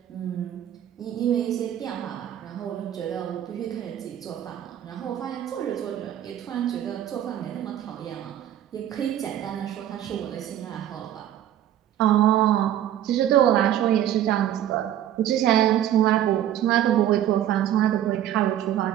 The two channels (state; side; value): quieter; left; 11.6 dB